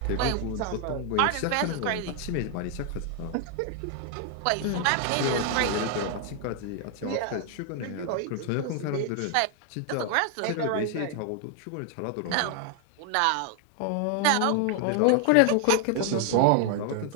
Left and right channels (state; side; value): different; both; correlation 0.00